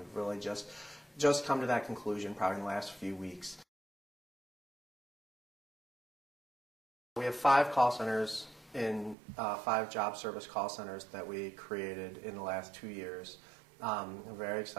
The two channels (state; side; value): drops out; left; at 9.2 s